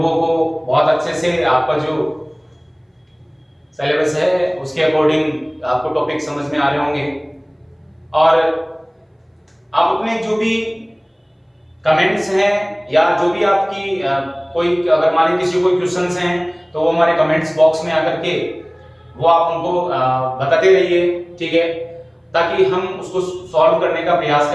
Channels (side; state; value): both; identical; correlation 1.00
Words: को बहुत अच्छे से आपका जो सिलेबस है उसके अकॉर्डिंग आपको टॉपिक समझ में आ रहे होंगे और आप अपने जो भी कमेंट्स हैं या जो भी आपकी कोई अगर मान लीजिए किसी कोई क्वेश्चंस हैं तो वो हमारे कमेंट्स बॉक्स में आकर के वो आप उनको बताते रहिए, ठीक है, ताकि हम उसको सॉल्व करने का प्रयास